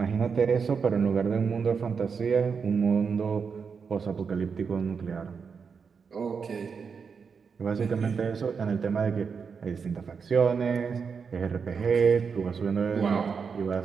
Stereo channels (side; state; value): left; quieter; 5.8 dB